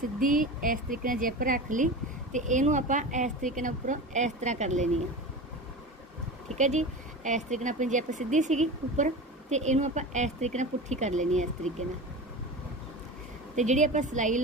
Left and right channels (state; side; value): normal; both; correlation 0.29